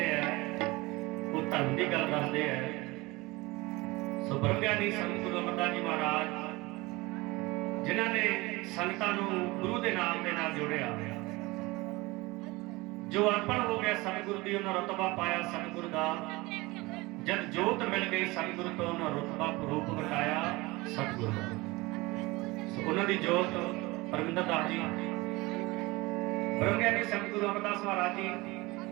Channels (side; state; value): left; quieter; 22.3 dB